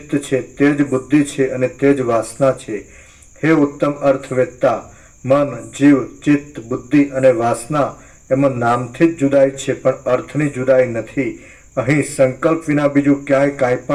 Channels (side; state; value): both; identical; correlation 1.00